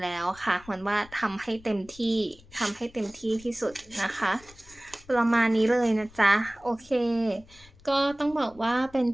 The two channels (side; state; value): left; noise; rumble, 24 dB below the sound